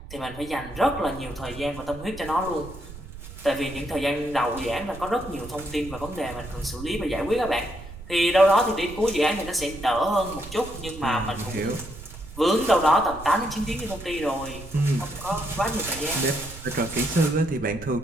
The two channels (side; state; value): right; noise; rumble, 14 dB below the sound